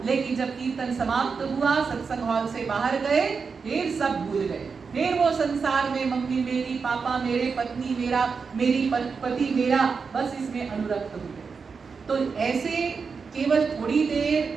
लेकिन जब कीर्तन समाप्त हुआ, सत्संग हॉल से बाहर गए, फिर सब भूल गए। फिर वो संसार में मम्मी मेरी, पापा मेरे, पत्नी मेरा, मेरी पति मेरा, बस इसमें अनुरक्त हो गए। तो ऐसे केवल थोड़ी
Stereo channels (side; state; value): left; quieter; 5.3 dB